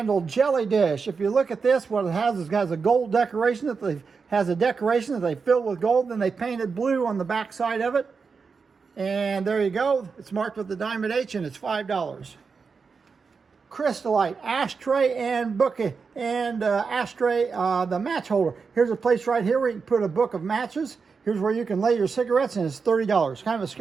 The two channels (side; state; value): left; quieter; 5.2 dB